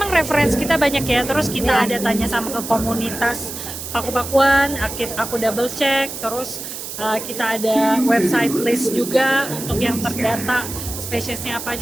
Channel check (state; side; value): noise; right; hiss, 8 dB below the sound